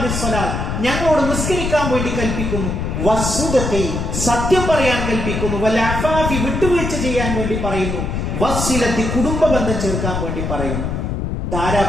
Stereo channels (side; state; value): left; noise; rumble, 2 dB below the sound